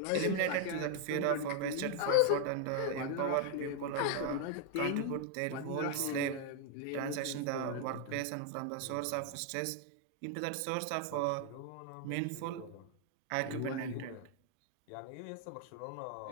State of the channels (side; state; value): both; different; correlation 0.00